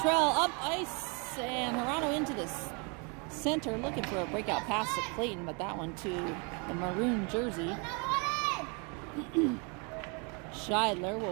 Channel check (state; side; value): quieter; left; 33.8 dB